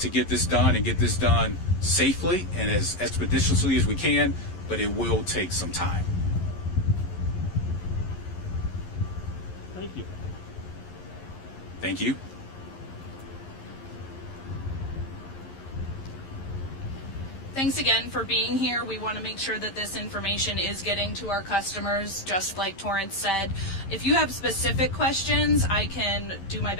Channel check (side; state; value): right; late; 11 ms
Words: get this done and get this done safely and as expeditiously as we can, but it will take some time. Thank you. Thank you. Thanks again for being here. We want to make sure that this information is getting to our customers, just like Torrance said. If you have specific questions, I can do my